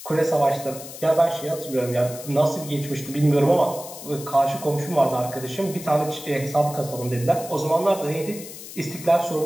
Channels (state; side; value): noise; left; hiss, 13 dB below the sound